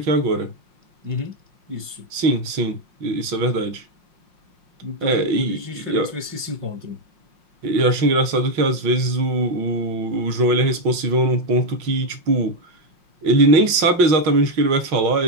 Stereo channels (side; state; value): left; late; 5.6 ms